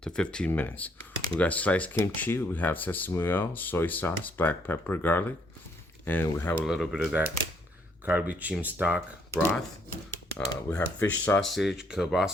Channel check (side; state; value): both; normal; correlation 0.69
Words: to 15 minutes. We got sliced kimchi, we have sesame oil, soy sauce, black pepper, garlic, and we have a little bit of that kalbi jjim stock broth. We have fish sausage,